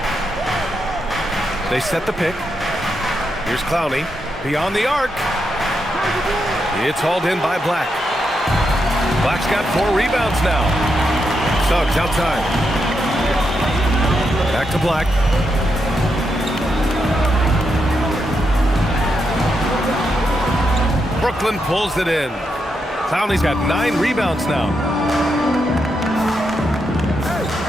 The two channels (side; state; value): both; normal; correlation 0.83